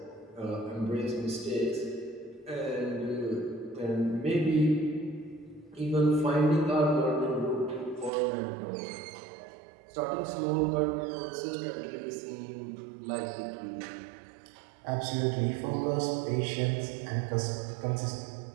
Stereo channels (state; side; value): drops out; left; at 8.1 s